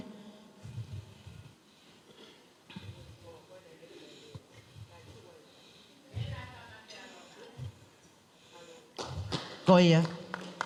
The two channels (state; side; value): identical; both; correlation 1.00